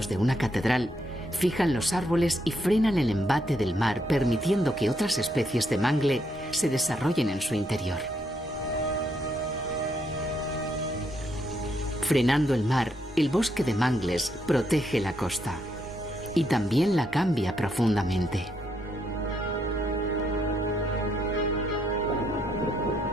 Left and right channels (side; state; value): both; normal; correlation 0.76